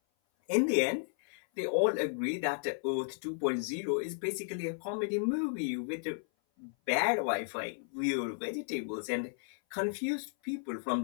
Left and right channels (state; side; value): silent; right; 55 dB below the other